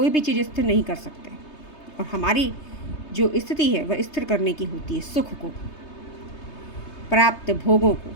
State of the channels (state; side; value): late; right; 3.3 ms